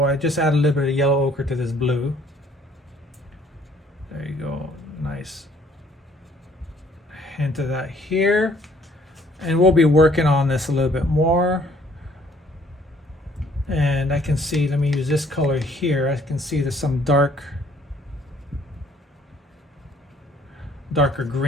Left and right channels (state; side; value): normal; both; correlation 0.61